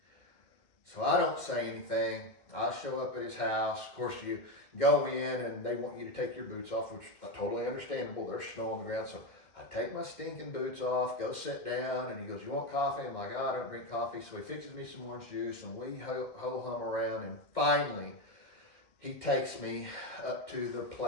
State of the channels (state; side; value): late; right; 2.2 ms